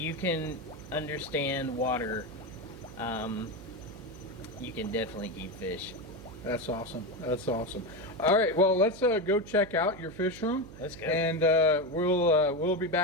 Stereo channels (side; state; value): right; noise; hum, 16 dB below the sound